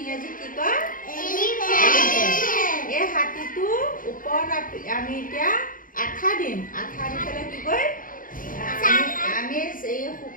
ইংৰাজীত কি কয়? এলিফেণ্ট। এই হাতীটো ওপৰত আমি এতিয়া আঠা দিম। আঠা দি পেলাই কি কয়? আমি এই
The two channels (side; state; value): right; late; 0.40 ms